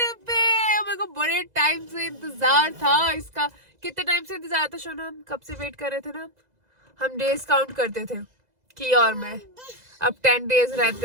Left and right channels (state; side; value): late; left; 2.0 ms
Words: पे। मेरे को बड़े टाइम से इंतजार था इसका। कितने टाइम से इंतजार था शोना? हम कब से वेट कर रहे थे ना? हम डेज काउंट करते थे की और मैं। अब 10 डेज रहते